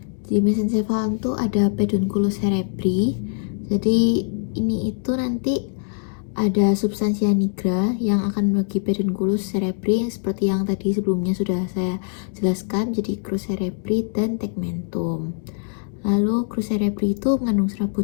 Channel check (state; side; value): silent; right; digital silence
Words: Di mesencephalon tuh ada pedunculus cerebri. Jadi ini itu nanti ada substansia nigra yang akan membagi pedunculus cerebri seperti yang tadi sebelumnya sudah saya jelaskan, jadi crus cerebri dan tegmentum. Lalu crus cerebri itu mengandung serabut